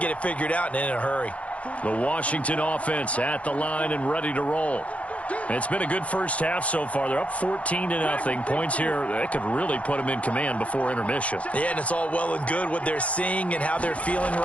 it figured out and in a hurry. The Washington offense at the line and ready to roll. It's been a good first half so far. They're up 14-0. Points here, that could really put them in command before intermission. Yeah, and it's all well and good what they're seeing and how they're feeling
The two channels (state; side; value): late; right; 0.064 ms